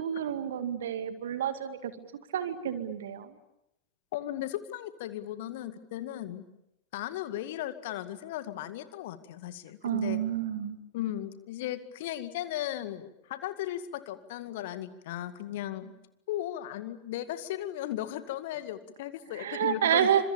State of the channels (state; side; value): inverted; both; correlation -0.38